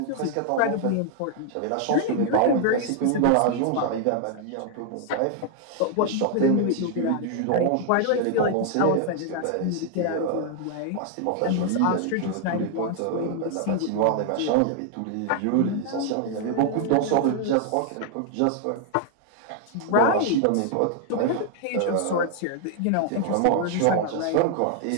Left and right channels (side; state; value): both; different; correlation 0.00